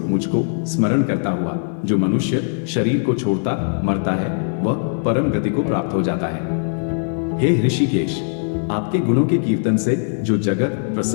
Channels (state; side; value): silent; right; 66 dB below the other